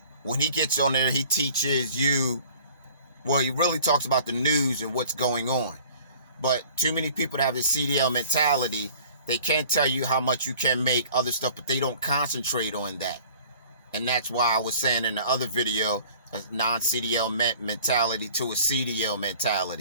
when he gets on there, he teaches you, well, he really talks about the news and what's going on. But too many people that have this CDL mentality, they can't tell you how much you can make, other stuff, but they don't concentrate on that. And that's why I was saying in the other video, a non-CDL mentality to a CDL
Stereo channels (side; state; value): both; inverted; correlation -0.49